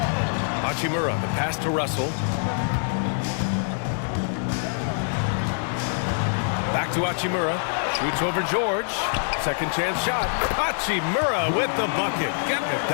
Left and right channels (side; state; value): right; silent; digital silence